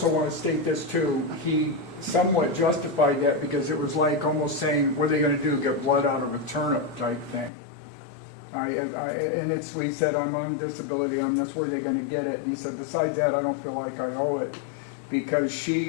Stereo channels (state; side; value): drops out; right; at 7.5 s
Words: want to state this too. He somewhat justified that because it was like almost saying, what are they going to do, get blood out of a turnip type thing. We said, I'm on disability, that's where they're going to get it. And he said, besides that, I don't feel like I owe it because